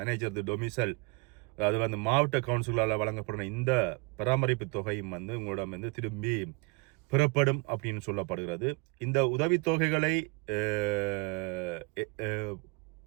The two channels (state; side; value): quieter; left; 28.2 dB